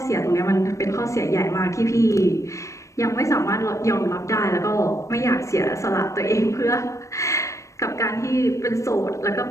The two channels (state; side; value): late; right; 0.15 ms